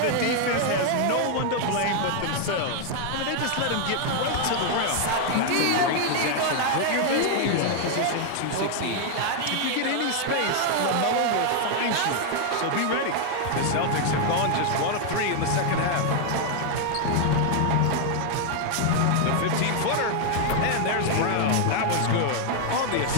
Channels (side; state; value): both; different; correlation 0.00